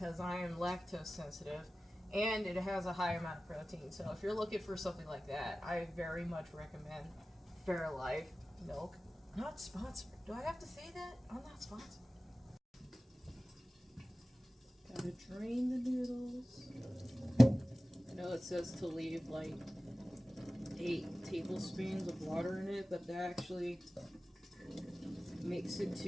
I am lactose sensitive, and it has a high amount of protein. So if you're looking for something like that, I very much recommend Fairlife milk. Not sponsored. Do I have to say that? I'm not sponsored. Gotta drain the noodles. I know it says to leave like 8 tablespoons of water in it, but that actually makes it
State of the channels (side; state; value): both; normal; correlation 0.96